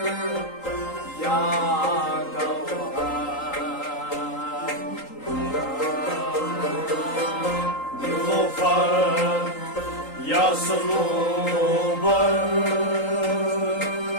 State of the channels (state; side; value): late; right; 3.8 ms